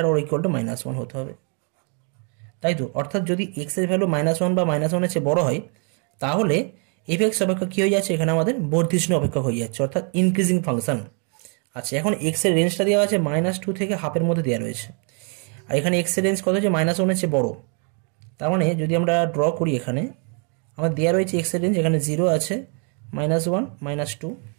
or equal to -1 হতে হবে, তাই তো। অর্থাৎ যদি x এর ভ্যালু -1 বা -1 এর চেয়ে বড় হয় তাহলে f(x) অপেক্ষক কী হয়ে যাচ্ছে, এখানে আমাদের বর্ধিষ্ণু অপেক্ষক হয়ে যাচ্ছে, অর্থাৎ ইনক্রিজিং ফাংশন। আচ্ছা এখন x এর রেঞ্জটা দেওয়া আছে -2 থেকে হাফের মধ্যে দেওয়া রয়েছে, আর এখানে x এর রেঞ্জ কত হচ্ছে, -1 এর চেয়ে বড়। তার মানে যদি আমরা ড্র করি এখানে আমার দেওয়া রয়েছে x এর রেঞ্জ, এখানে 0 আছে, -1 -2,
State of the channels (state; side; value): quieter; left; 39.0 dB